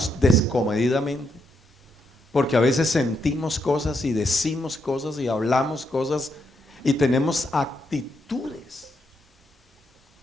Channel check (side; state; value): both; normal; correlation 0.79